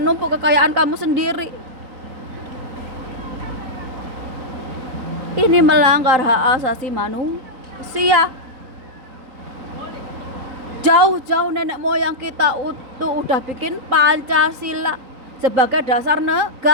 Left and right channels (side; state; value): left; late; 3.8 ms